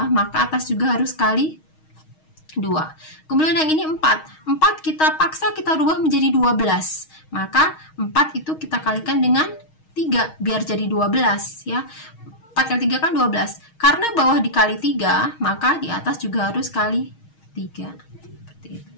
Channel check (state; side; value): late; right; 6.4 ms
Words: maka atas juga harus kali 2. Kemudian yang ini 4. 4 kita paksa kita rubah menjadi 12. Maka 4 itu kita kalikan dengan 3 biar jadi 12 ya. 4 kali 3 kan 12. Karena bawah dikali 3, maka di atas juga harus kali 3. Seperti itu.